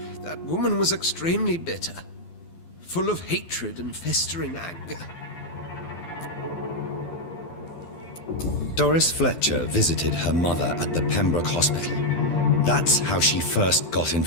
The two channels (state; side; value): late; right; 12 ms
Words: That woman was extremely bitter, full of hatred and festering anger. Doris Fletcher visited her mother at the Pembroke Hospital. That's how she first got